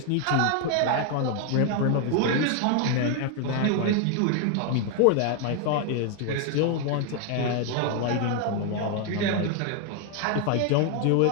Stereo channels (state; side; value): different; both; correlation 0.01